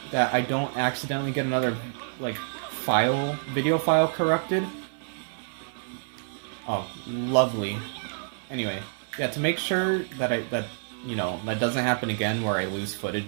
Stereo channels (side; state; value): left; silent; 60 dB below the other